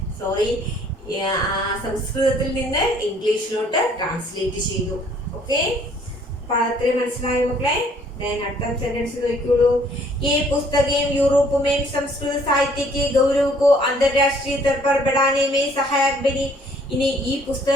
സംസ്കൃതത്തിൽ നിന്ന് ഇംഗ്ലീഷിലോട്ട് ട്രാൻസ്ലേറ്റ് ചെയ്തു. ഓക്കെ. അപ്പൊ അത്രയും മനസ്സിലായോ മക്കളെ? അടുത്ത सेंटेंस നോക്കിയോളൂ. ये पुस्तकें यूरोप में संस्कृत साहित्य के गौरव को अंतरराष्ट्रीय स्तर पर बढ़ाने में सहायक बनी. ഇനി ഈ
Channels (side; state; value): both; normal; correlation 0.60